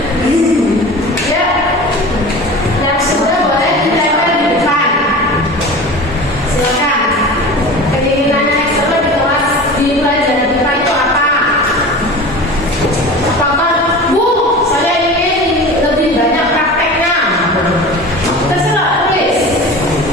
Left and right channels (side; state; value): both; normal; correlation 0.35